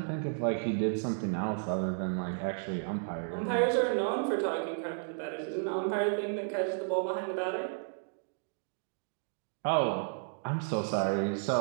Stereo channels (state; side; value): silent; left; digital silence